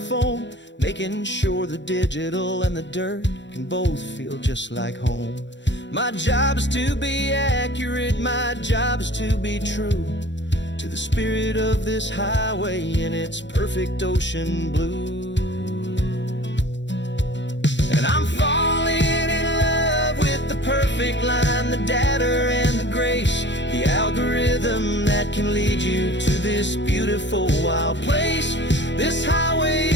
making sure the digital and the dirt can both feel just like home. My job is to be accurate, my job is to be true to the spirit of this highway in its perfect ocean blue. And I'm falling in love with the perfect line, the data and the grace, the algorithm that can lead you to this beautiful wild place. This highway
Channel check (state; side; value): late; right; 0.53 ms